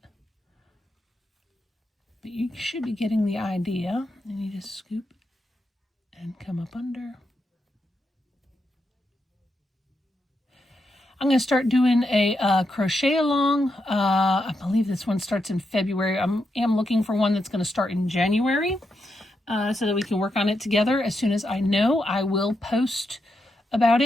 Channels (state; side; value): normal; both; correlation 0.84